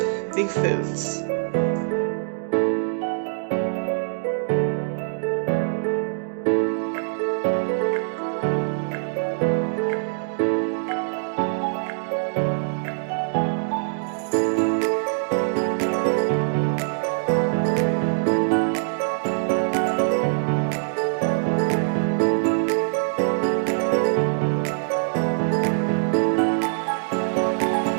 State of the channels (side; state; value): left; silent; digital silence